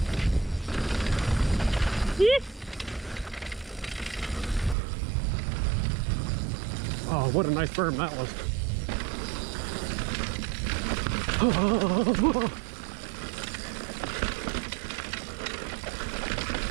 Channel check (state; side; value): drops out; left; at 4.8 s